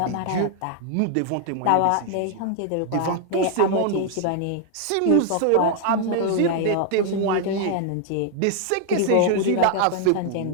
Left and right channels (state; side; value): different; both; correlation 0.00